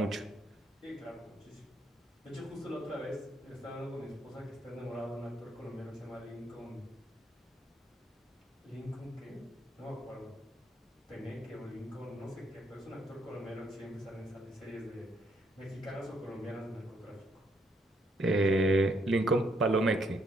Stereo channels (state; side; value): normal; both; correlation 0.72